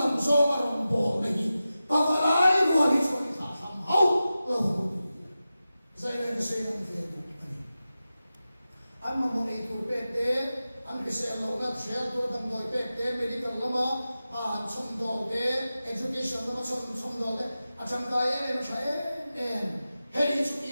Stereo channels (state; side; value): inverted; both; correlation -0.94